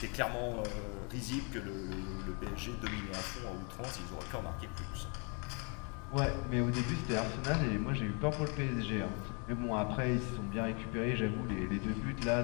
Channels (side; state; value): right; quieter; 35.7 dB